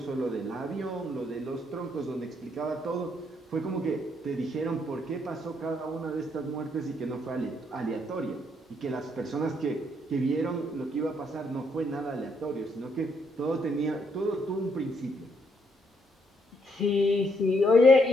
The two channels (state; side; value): normal; both; correlation 0.73